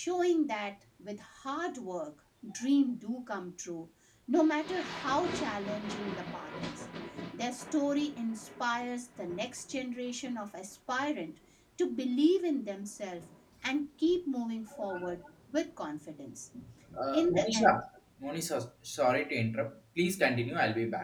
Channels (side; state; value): both; identical; correlation 1.00